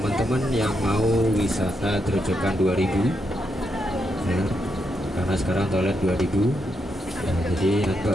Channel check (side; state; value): both; normal; correlation 0.81